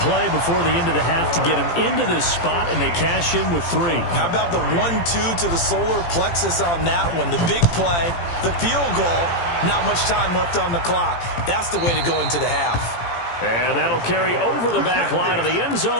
before the end of the half to get him into this spot, and they cash in with 3. How about the 1-2 to the solar plexus on that one? The big play, the field goal, not much time left on the clock. That's the way to go into the half. And that'll carry over the back line of the end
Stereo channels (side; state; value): right; late; 17 ms